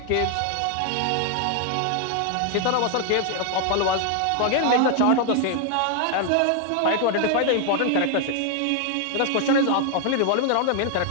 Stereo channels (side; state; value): both; different; correlation 0.00